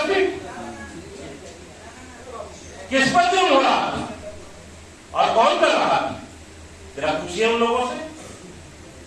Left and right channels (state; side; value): identical; both; correlation 1.00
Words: किस पर जुर्म हो रहा और कौन कर रहा, जरा पूछिए उन लोगों से।